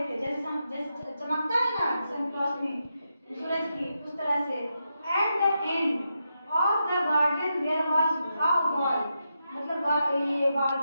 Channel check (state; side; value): inverted; both; correlation -0.85